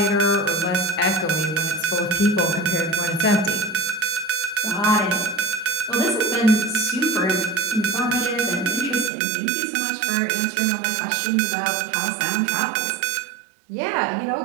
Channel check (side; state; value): left; drops out; at 9.1 s